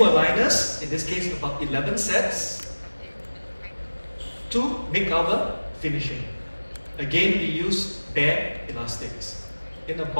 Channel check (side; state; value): both; inverted; correlation -1.00